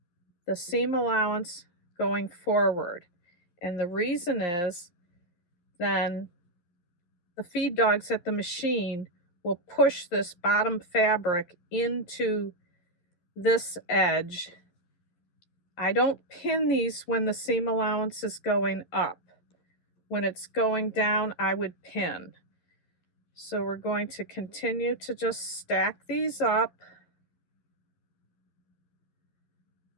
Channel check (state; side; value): late; right; 11 ms